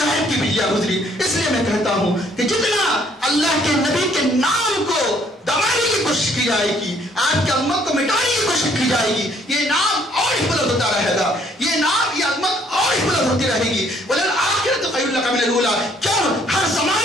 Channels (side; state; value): both; normal; correlation 0.63